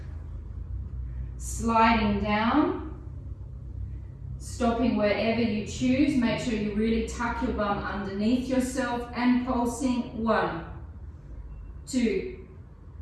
sliding down, stopping wherever you choose. Make sure you really tuck your bum underneath yourself and pulsing. 1, 2,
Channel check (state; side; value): identical; both; correlation 1.00